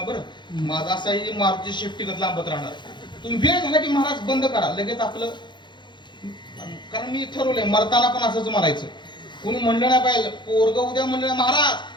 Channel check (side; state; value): right; late; 0.22 ms